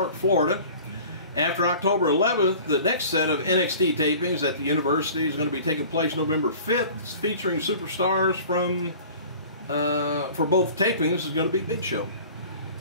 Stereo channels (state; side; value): inverted; both; correlation -0.44